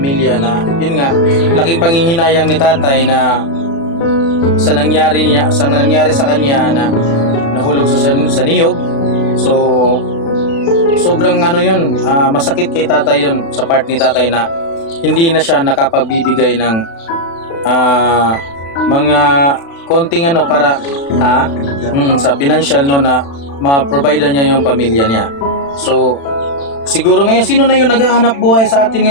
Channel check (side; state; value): right; late; 36 ms